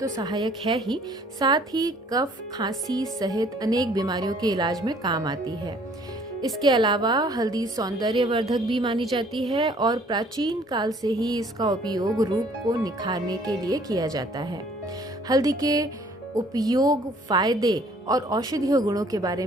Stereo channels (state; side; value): normal; both; correlation 0.58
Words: सहायक है ही, साथ ही कफ, खांसी सहित अनेक बीमारियों के इलाज में काम आती है। इसके अलावा हल्दी सौंदर्यवर्धक भी मानी जाती है और प्राचीन काल से ही इसका उपयोग रूप को निखारने के लिए किया जाता है। हल्दी के उपयोग, फायदे और औषधीय गुणों के बारे